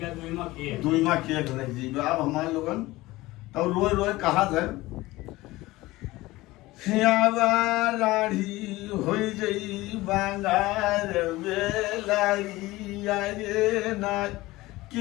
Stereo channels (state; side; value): quieter; right; 19.0 dB